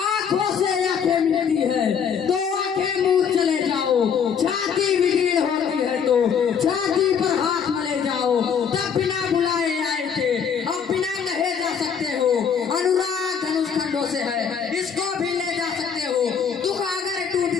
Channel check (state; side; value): quieter; right; 7.0 dB